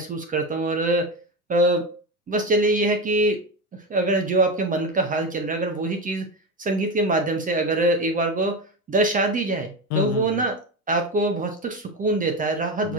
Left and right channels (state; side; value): normal; both; correlation 0.18